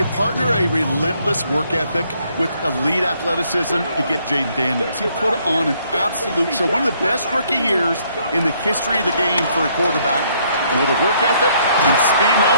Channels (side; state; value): both; inverted; correlation -0.68